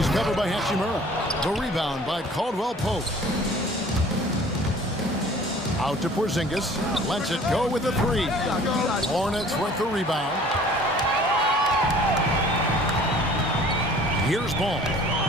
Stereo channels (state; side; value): normal; both; correlation 0.50